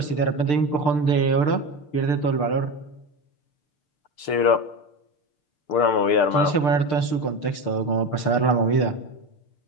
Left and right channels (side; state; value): right; late; 6.7 ms